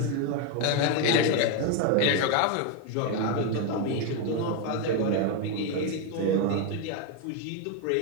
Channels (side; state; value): both; different; correlation 0.02